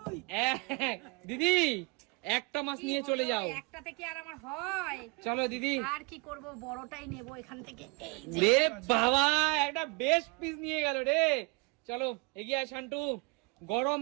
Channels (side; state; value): left; quieter; 27.9 dB